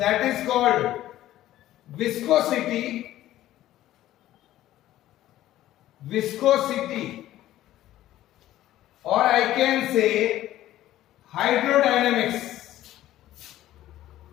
is called viscosity. Viscosity, or I can say hydrodynamics.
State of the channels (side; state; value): right; quieter; 14.0 dB